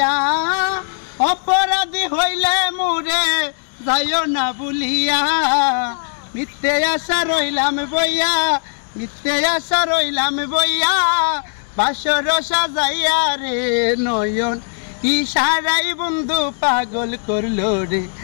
অপরাধী হইলে মোরে যাইও না ভুলিয়া মিথ্যে আশা রইলাম বইয়া মিথ্যে আশা রইলাম বইয়া বাসর সাজাইয়া রে নয়ন ইশারাই বন্ধু পাগল করলো রে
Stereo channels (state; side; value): silent; right; digital silence